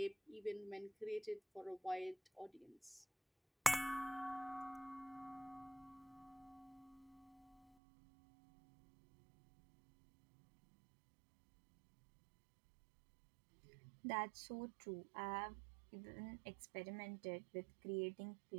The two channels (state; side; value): drops out; left; at 7.8 s